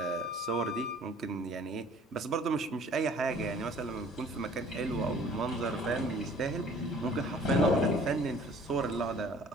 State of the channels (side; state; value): both; normal; correlation 0.52